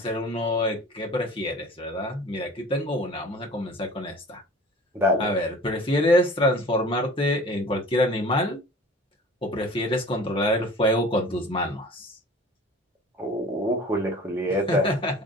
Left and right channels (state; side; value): normal; both; correlation 0.44